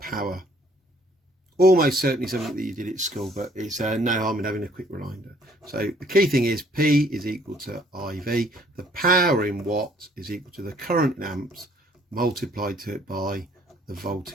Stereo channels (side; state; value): both; normal; correlation 0.61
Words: Almost certainly something that you did at school, but it's no harm in having a quick reminder. So the key thing is P is equal to IV. The power in watts is equal to the current in amps multiplied to it by the